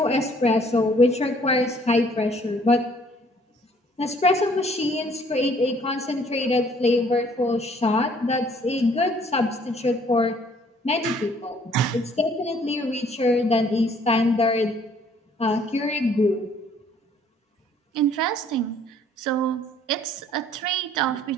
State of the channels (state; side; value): normal; both; correlation 0.60